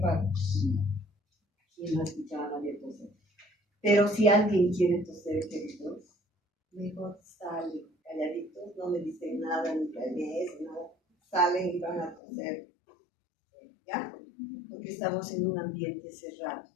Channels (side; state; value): right; drops out; at 12.2 s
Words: Y no escuchaba a nadie toser. Pero si alguien quiere toser, queridos, mejor salen calladitos, no me dicen nada, ni planees, nada. Salen y van a toser. ¿Ya? Porque estamos en un ambiente cerrado.